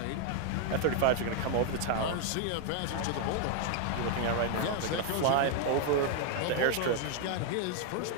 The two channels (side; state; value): both; different; correlation 0.00